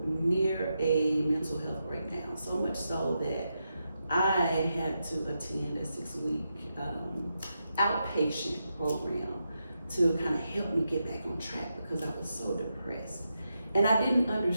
near a mental health breakdown. So much so that I had to attend a 6-week outpatient program to kind of help me get back on track because I was so depressed. And I didn't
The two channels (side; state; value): both; inverted; correlation -0.86